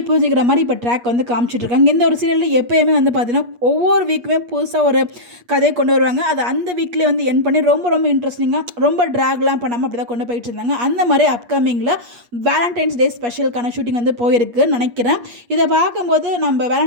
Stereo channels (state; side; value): late; left; 8.4 ms